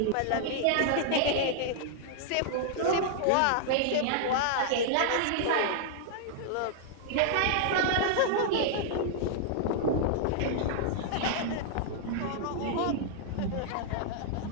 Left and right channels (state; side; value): different; both; correlation -0.01